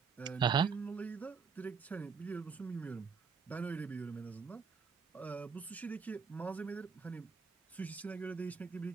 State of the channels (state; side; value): quieter; left; 5.6 dB